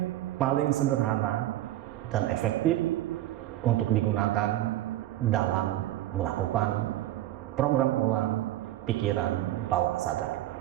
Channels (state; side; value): quieter; left; 14.4 dB